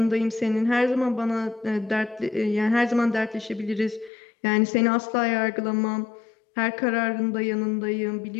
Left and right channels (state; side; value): drops out; right; at 4.1 s